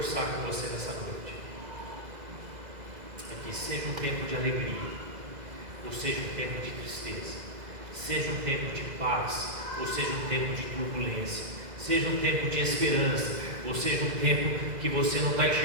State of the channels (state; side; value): late; left; 2.0 ms